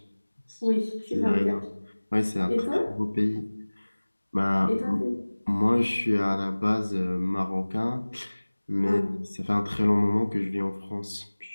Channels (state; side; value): inverted; both; correlation -1.00